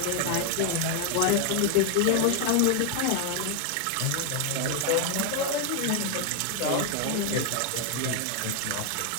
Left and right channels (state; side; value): different; both; correlation 0.00